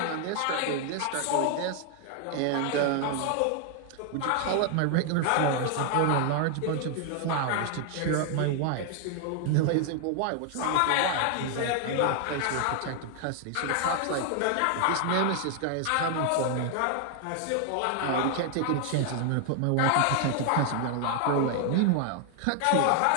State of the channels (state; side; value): different; both; correlation 0.00